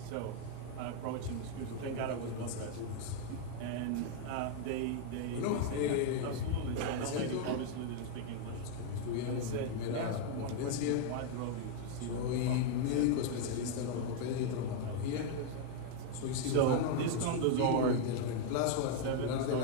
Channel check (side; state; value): both; different; correlation 0.00